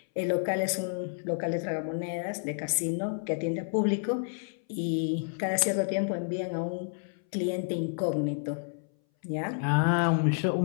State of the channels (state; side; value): silent; right; 58 dB below the other